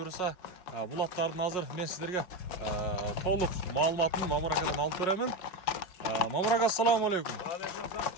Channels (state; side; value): late; right; 5.5 ms